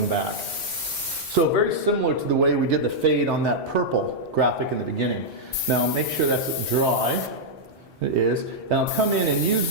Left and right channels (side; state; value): both; normal; correlation -0.06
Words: back. So very similar to the way we did the fade on that purple graphic in the beginning. Now make sure that's dry. It is. And I'll come in and